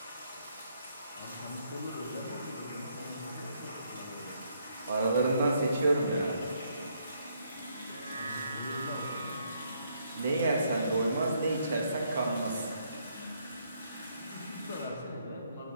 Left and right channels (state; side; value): inverted; both; correlation -0.72